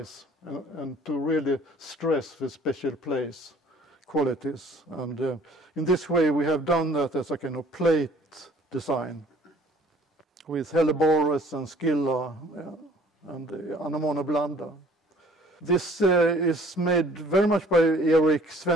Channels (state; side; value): normal; both; correlation 0.54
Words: and to really stress the special place qualities. And in this way we have done that as a kind of plate design with Helleborus and Scylla and Anemone blanda. This is made very much by Erik